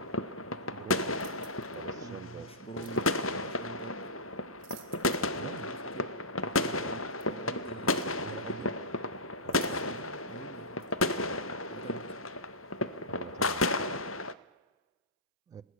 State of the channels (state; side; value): normal; both; correlation -0.17